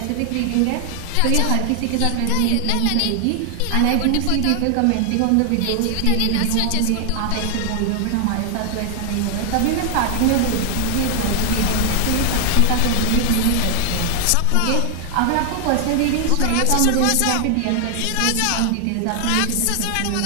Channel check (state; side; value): different; both; correlation 0.00